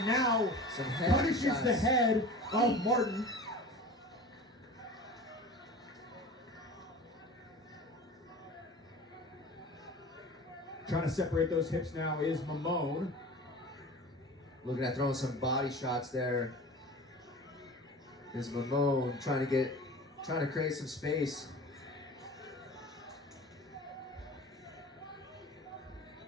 now Some head punishes shots. the head of Martin. Trying to separate those hips now is Mamone. Looking at throwing some body shots there. Is Mamone trying to create some space.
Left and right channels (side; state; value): both; normal; correlation 0.37